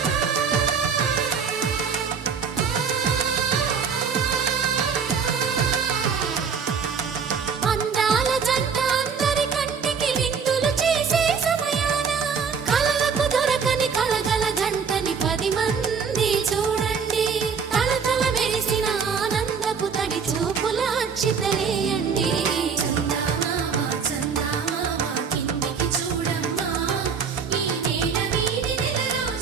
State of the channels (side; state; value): left; quieter; 6.1 dB